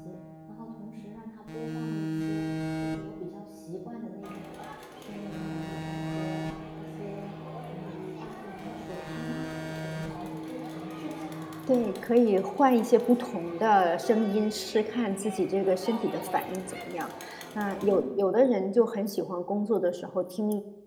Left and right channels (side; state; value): both; identical; correlation 1.00